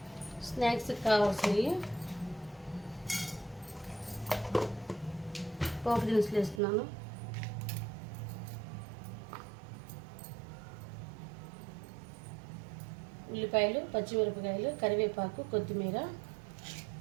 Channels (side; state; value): left; drops out; at 6.6 s